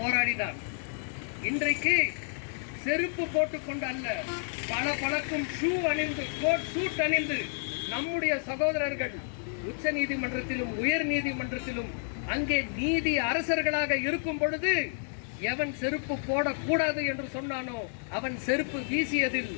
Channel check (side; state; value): right; silent; 58 dB below the other